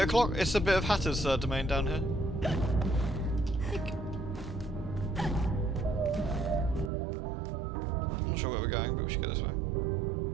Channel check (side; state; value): left; drops out; at 6.9 s